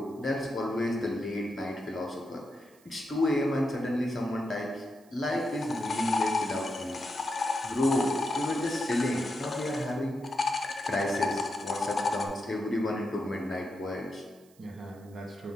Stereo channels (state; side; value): noise; right; hiss, 29 dB below the sound